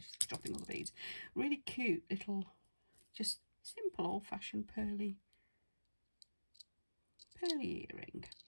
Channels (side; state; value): both; inverted; correlation -1.00